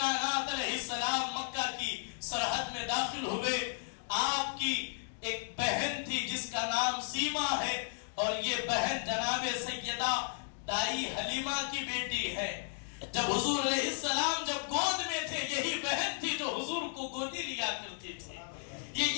علیہ السلام مکہ کی سرحد میں داخل ہوئے. آپ کی ایک بہن تھی جس کا نام سیما ہے، اور یہ بہن جناب سیدہ دائی حلیمہ کی بیٹی ہے. جب حضور علیہ السلام جب گود میں تھے، یہی بہن تھی جو حضور کو گودی لیا کرتی تھی،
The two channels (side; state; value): right; silent; digital silence